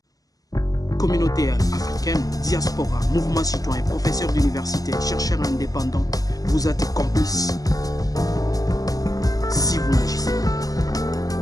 communauté africaine, diaspora, mouvement citoyen, professeurs d'université, chercheurs indépendants, vous êtes complices si vous n'agissez pas.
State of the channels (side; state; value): right; late; 0.17 ms